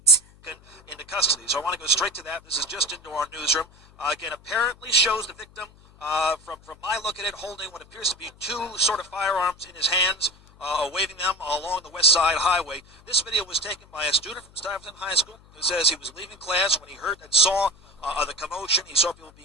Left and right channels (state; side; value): noise; left; hum, 26 dB below the sound